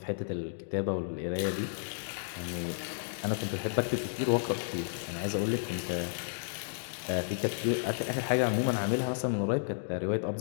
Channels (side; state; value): right; silent; digital silence